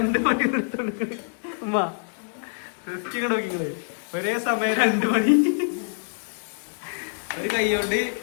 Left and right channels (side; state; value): right; silent; digital silence